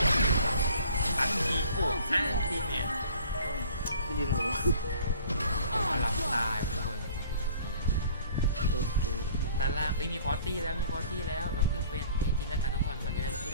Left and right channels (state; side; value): inverted; both; correlation -0.51